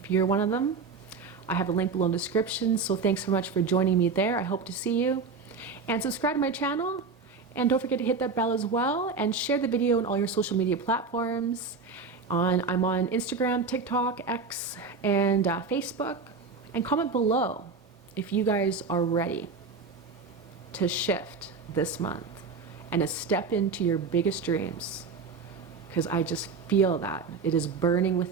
you're one of them, I have a link below in the description. So thanks so much for joining me there. I hope to see you. And subscribe to my channel. And don't forget to hit that bell as well, and share the video on all your social media platforms. I'm on Instagram, TikTok, X, and Facebook. And comment below if you guys are ready to shift this month and to step into your biggest dreams. Because I just feel that it is burning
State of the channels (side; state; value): left; quieter; 4.7 dB